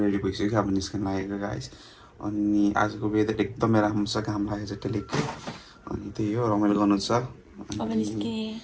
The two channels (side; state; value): both; identical; correlation 1.00